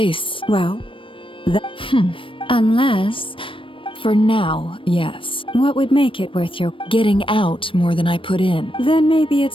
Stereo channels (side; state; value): right; late; 0.25 ms